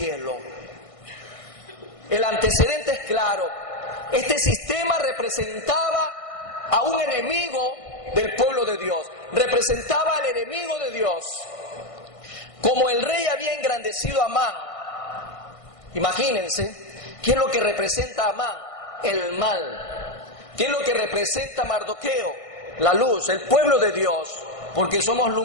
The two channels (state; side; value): late; right; 1.5 ms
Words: El antecedente es claro. Este sistema representaba a un enemigo del pueblo de Dios. Representaba al enemigo de Dios. Como el rey había engrandecido a Amán, imagínense, ¿qué es lo que representa a Amán? El mal. ¿Qué es lo que representa a Mardoqueo? La luz, el pueblo de Dios, porque somos